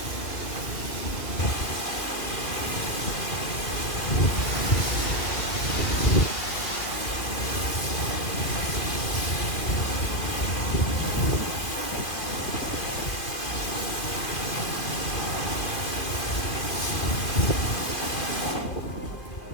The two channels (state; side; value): late; right; 2.5 ms